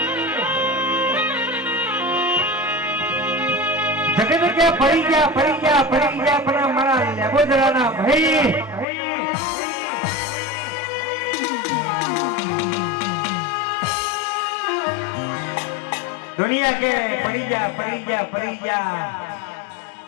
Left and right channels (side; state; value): right; drops out; at 8.8 s